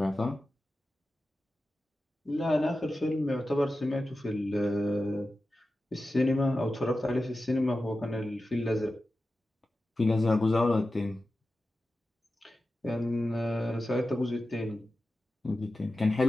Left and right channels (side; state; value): both; normal; correlation 0.93